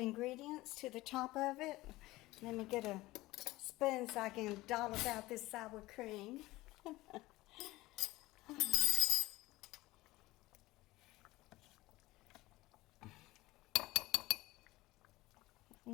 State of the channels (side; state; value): right; quieter; 18.8 dB